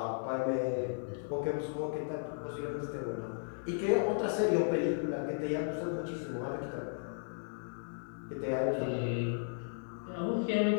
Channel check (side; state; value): right; silent; digital silence